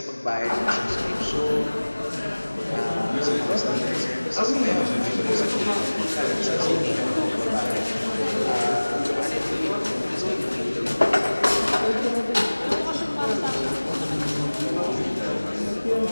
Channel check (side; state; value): both; inverted; correlation -1.00